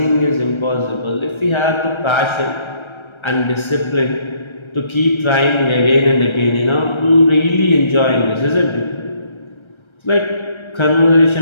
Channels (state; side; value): late; right; 1.3 ms